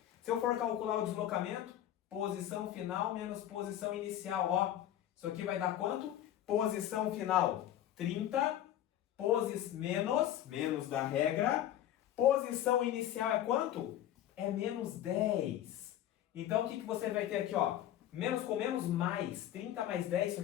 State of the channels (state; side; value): quieter; right; 11.9 dB